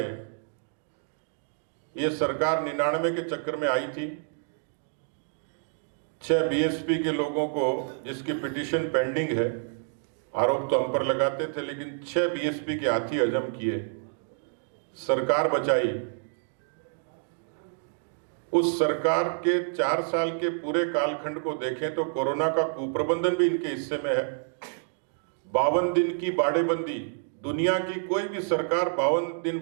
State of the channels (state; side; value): silent; left; digital silence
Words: ये सरकार 99 के चक्कर में आई थी। 6 बीएसपी के लोगों को, जिसकी पिटीशन पेंडिंग है, आरोप तो हम पर लगाते थे, लेकिन 6 बीएसपी के हाथी हजम किए, सरकार बचाई। उस सरकार के 4 साल के पूरे कालखंड को देखें तो कोरोना का कुप्रबंधन भी इनके हिस्से में है। 52 दिन की बाड़ेबंदी, दुनिया की कोई भी सरकार 52 दिन